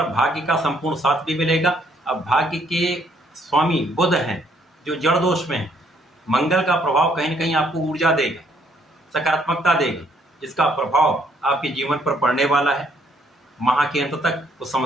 भाग्य का संपूर्ण साथ भी मिलेगा। अब भाग्य के स्वामी बुध हैं जो जड़ दोष में है, मंगल का प्रभाव कहीं न कहीं आपको ऊर्जा देगा, सकारात्मकता देगा, जिसका प्रभाव आपके जीवन पर पड़ने वाला है। माह के अंत तक कुछ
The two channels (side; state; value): both; normal; correlation 0.68